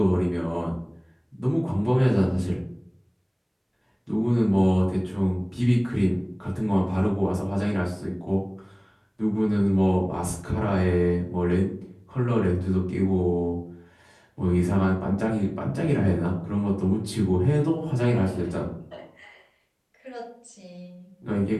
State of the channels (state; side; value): identical; both; correlation 1.00